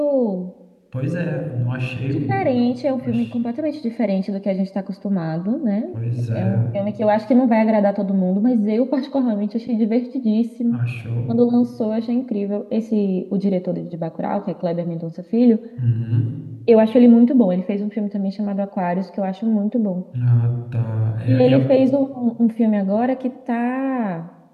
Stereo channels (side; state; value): both; identical; correlation 1.00